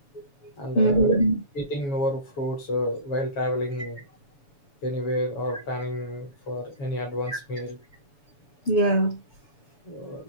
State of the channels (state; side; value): late; right; 7.1 ms